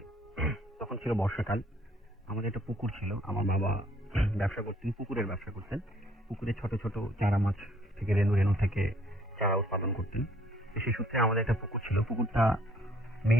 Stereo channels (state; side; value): normal; both; correlation 0.62